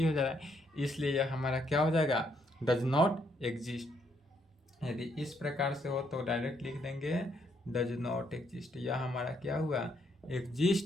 हो जा रहा है, इसलिए यह हमारा क्या हो जाएगा, डज नॉट एग्जिस्ट। यदि इस प्रकार से हो तो डायरेक्ट लिख देंगे डज नॉट एग्जिस्ट। यह हमारा क्या हुआ,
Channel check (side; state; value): both; normal; correlation 0.73